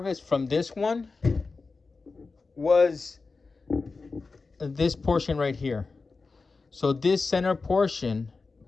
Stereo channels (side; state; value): right; quieter; 4.1 dB